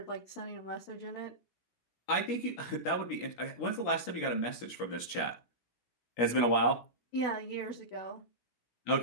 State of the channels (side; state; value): right; late; 17 ms